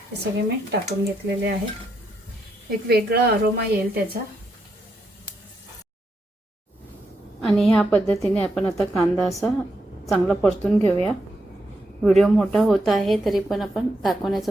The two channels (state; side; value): normal; both; correlation 0.81